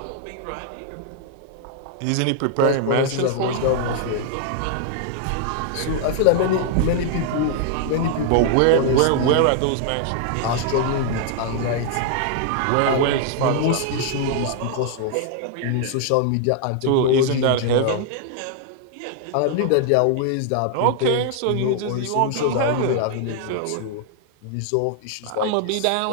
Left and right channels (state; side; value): different; both; correlation 0.00